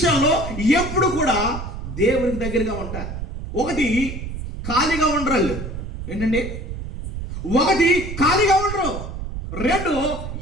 ఎప్పుడు కూడా దేవునికి దగ్గరగా ఉంటారు. ఒకటి, ఖాళీగా ఉండరు. ఏంటండి? ఒకటి, ఖాళీగా ఉండరు. 2,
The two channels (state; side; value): noise; right; rumble, 7 dB below the sound